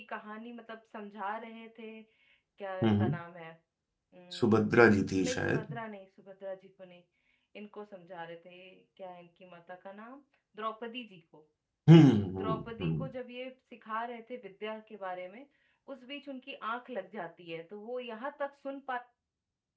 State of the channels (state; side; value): identical; both; correlation 1.00